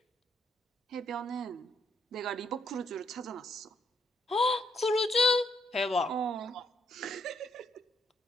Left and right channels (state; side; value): normal; both; correlation 0.73